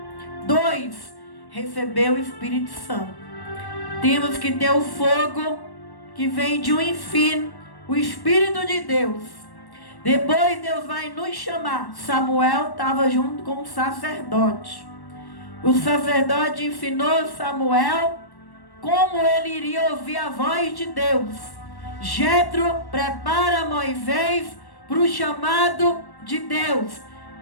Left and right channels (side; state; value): right; late; 1.1 ms